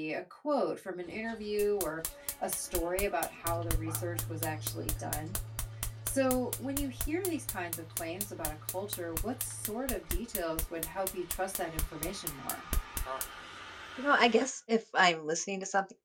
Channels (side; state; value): both; identical; correlation 1.00